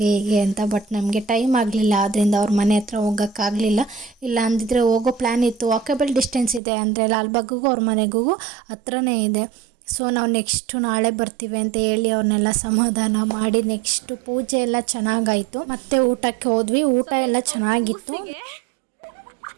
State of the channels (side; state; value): left; drops out; at 6.6 s